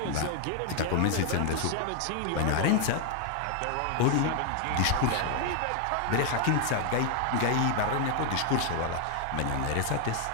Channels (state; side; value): different; both; correlation 0.00